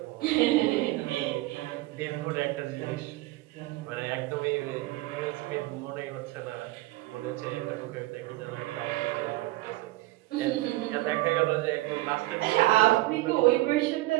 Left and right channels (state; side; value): quieter; left; 18.8 dB